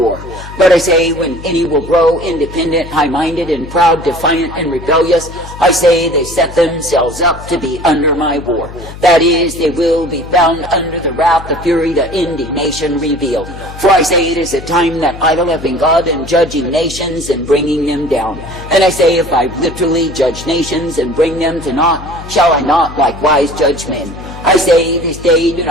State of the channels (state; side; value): noise; left; hum, 14 dB below the sound